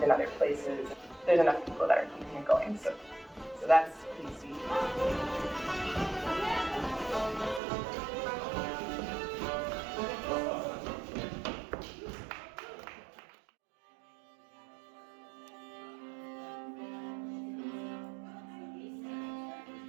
in other places. There's enough people that are keeping it going, so that's easy.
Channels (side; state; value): left; drops out; at 7.6 s